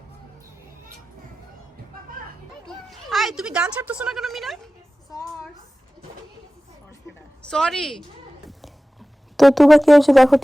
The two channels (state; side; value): normal; both; correlation 0.96